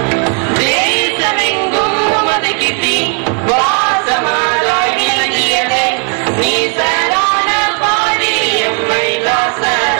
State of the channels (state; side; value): quieter; left; 38.6 dB